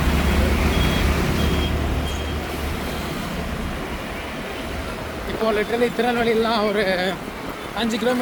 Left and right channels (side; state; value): both; identical; correlation 1.00